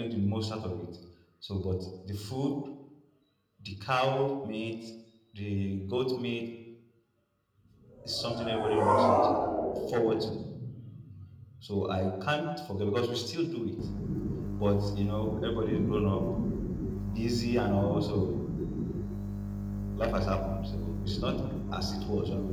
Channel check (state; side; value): identical; both; correlation 1.00